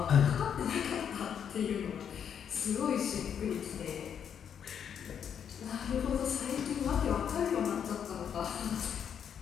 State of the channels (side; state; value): right; quieter; 8.2 dB